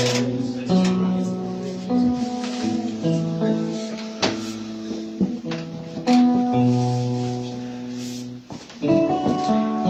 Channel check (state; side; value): identical; both; correlation 1.00